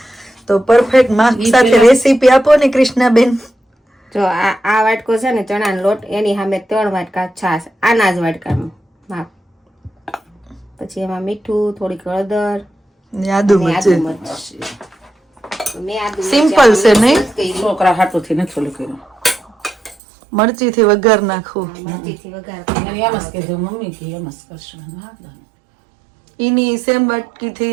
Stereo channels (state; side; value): drops out; left; at 20.0 s